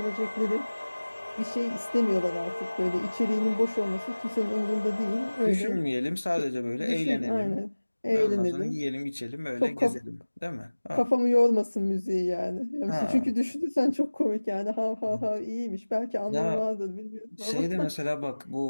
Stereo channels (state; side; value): inverted; both; correlation -1.00